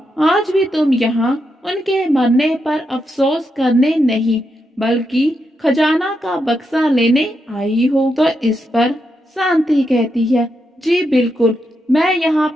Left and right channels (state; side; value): normal; both; correlation 0.83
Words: आज भी तुम यहाँ उनके मरने पर अफसोस करने नहीं, बल्कि खजाना का बक्सा लेने आई हो। तो इस पर शांति कहती है, जी बिल्कुल, मैं यहाँ